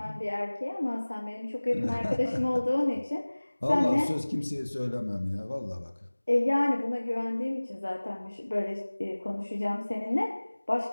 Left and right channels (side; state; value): both; inverted; correlation -1.00